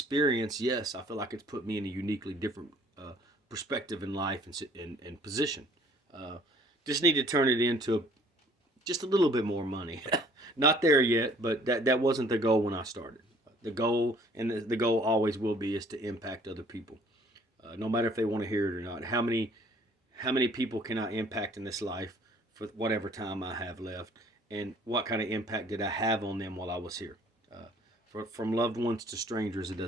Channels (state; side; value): normal; both; correlation 0.57